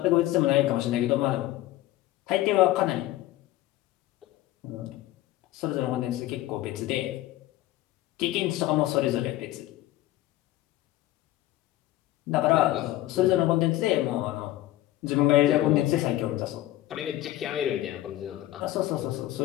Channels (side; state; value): right; quieter; 15.3 dB